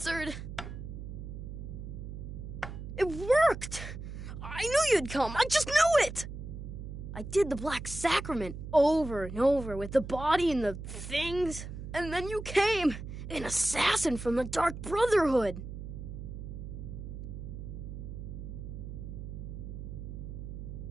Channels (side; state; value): right; noise; hum, 9 dB below the sound